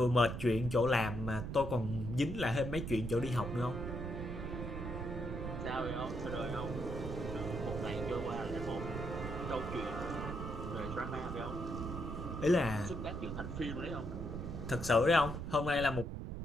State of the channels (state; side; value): noise; right; rumble, 5 dB below the sound